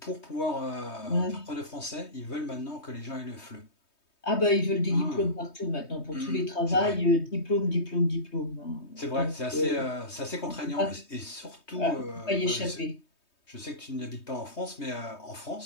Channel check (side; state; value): right; late; 3.2 ms